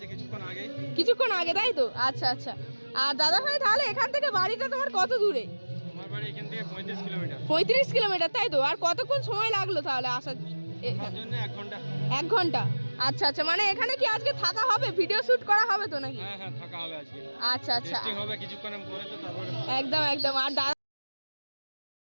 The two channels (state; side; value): inverted; both; correlation -1.00